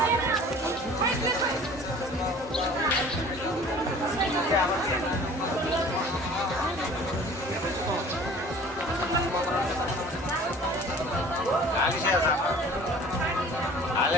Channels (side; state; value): both; normal; correlation 0.47